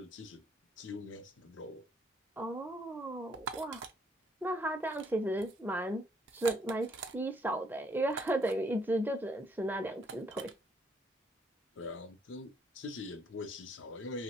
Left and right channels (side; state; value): both; normal; correlation 0.68